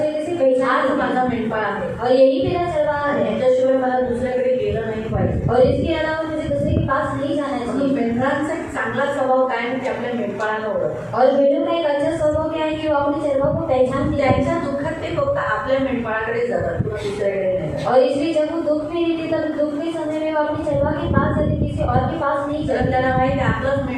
तरीके से आज पहचान माझा मेंढपाळ आहे और यही मेरा चरवाहा आणि है. याच्याशिवाय मला दुसऱ्याकडे गेलं नाही पाहिजे. और इसके अलावा मुझे दूसरे के पास नहीं जाना म्हणून चाहिए. मेंढरांचा एक चांगला स्वभाव काय म्हणजे आपल्या मेंढपाळाला ओळखतात. और भेड़ों का एक अच्छा स्वभाव क्या है कि वो अपने चरवाहा को पहचानती है. त्यांच्या दुःखात ते फक्त आपल्या मेंढपाळाकडे जातात, किंवा दुसऱ्याकडे नाही जात. और इसलिए जब वो दुख में रहती तब दुख के समय में वो अपने चरवाहा के पास जाती, किसी और के पास नहीं कारण जाती. त्यांना माहिती आहे आपलंच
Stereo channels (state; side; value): identical; both; correlation 1.00